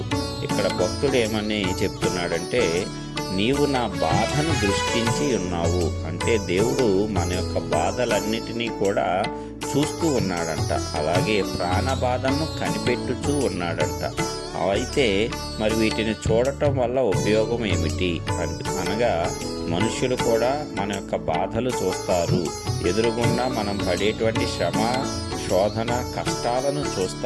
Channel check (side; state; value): both; identical; correlation 1.00